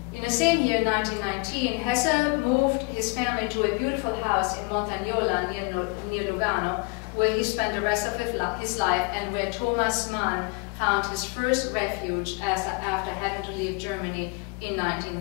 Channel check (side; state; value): right; quieter; 30.6 dB